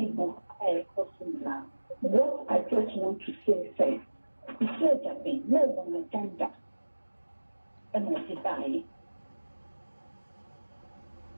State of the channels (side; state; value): both; inverted; correlation -1.00